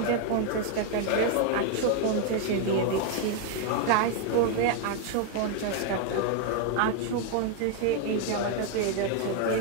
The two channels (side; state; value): both; different; correlation 0.01